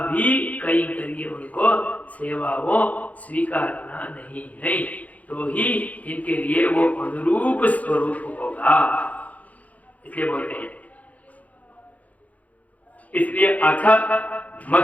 भी कैंकर्य उनको सेवाओं स्वीकारना नहीं है, तो ही इनके लिए वो अनुरूप स्वरूप होगा, इसलिए बोलते हैं। इसलिए अथ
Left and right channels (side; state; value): right; late; 0.072 ms